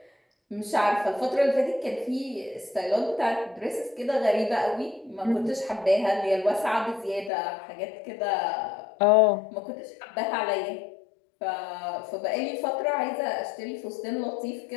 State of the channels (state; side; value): drops out; right; at 7.3 s